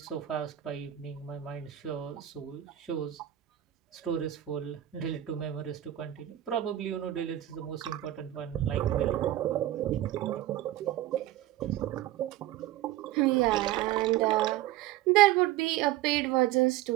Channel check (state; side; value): quieter; left; 13.9 dB